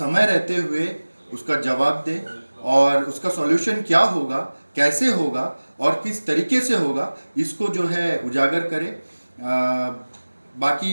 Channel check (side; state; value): both; inverted; correlation -1.00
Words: रहते हुए उसका जवाब दें और उसका सॉल्यूशन क्या होगा, कैसे होगा और किस तरीके से होगा, इसको जो है उजागर करें।